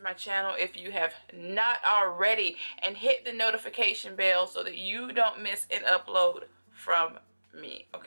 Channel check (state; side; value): inverted; both; correlation -1.00